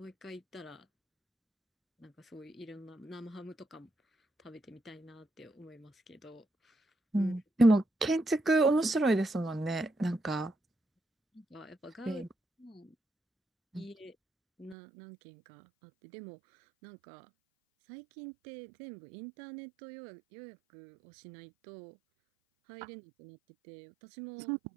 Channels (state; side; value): drops out; left; at 14.8 s